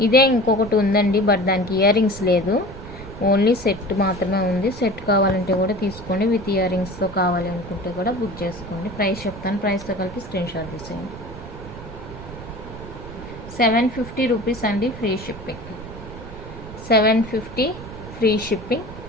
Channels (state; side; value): noise; right; rumble, 13 dB below the sound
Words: ఇదే ఇంకొకటి ఉందండి, బట్ దానికి ఇయర్ రింగ్స్ లేదు, ఓన్లీ సెట్ మాత్రమే ఉంది. సెట్ కావాలంటే కూడా తీసుకోండి, విత్ ఇయర్ రింగ్స్తో కావాలి అనుకుంటే కూడా బుక్ చేసుకోండి. ప్రైస్ చెప్తాను, ప్రైస్తో కలిపి స్క్రీన్ షాట్ తీసేయండి. 750 రూపీస్ అండి, ఫ్రీ షిప్పింగ్. 750 free shipping.